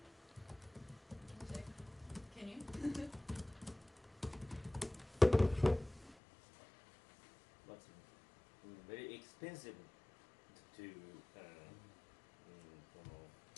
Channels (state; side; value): drops out; right; at 6.2 s